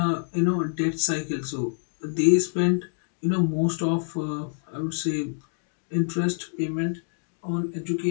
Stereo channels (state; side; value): silent; right; digital silence